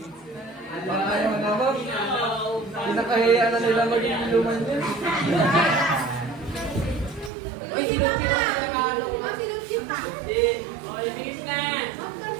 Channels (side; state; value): left; drops out; at 7.3 s